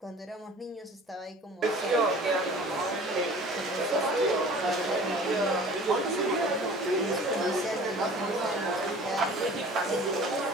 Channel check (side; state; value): both; normal; correlation 0.45